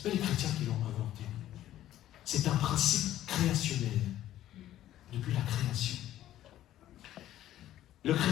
n'est pas les chrétiens qui l'ont inventé. C'est un principe créationnel, depuis la création. Le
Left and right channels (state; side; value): quieter; right; 13.0 dB